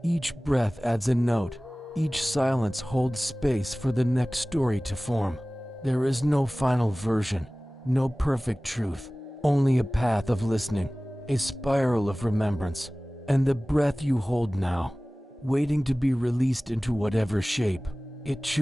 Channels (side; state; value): both; normal; correlation 0.98